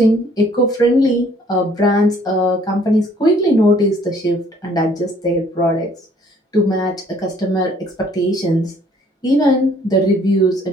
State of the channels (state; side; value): normal; both; correlation 0.60